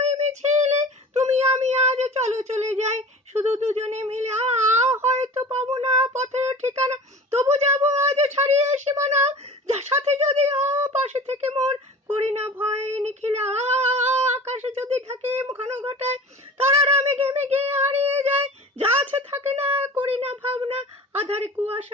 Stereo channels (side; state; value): both; normal; correlation 0.38